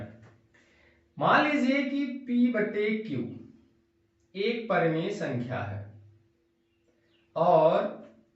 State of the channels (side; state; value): both; identical; correlation 1.00